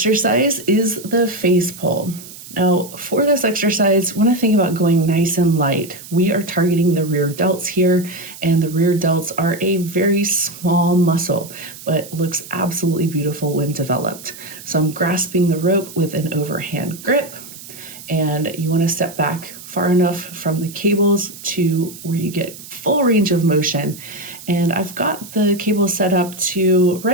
is the face pull. Now, for this exercise, when I think about going nice and light, we are targeting the rear delts here, and the rear delts are a very small muscle, but looks absolutely beautiful when developed. So I'm grasping the rope with an overhand grip, and you want to step back far enough from the cables to where you get full range of motion. And I've got the cable set up to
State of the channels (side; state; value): right; noise; hiss, 16 dB below the sound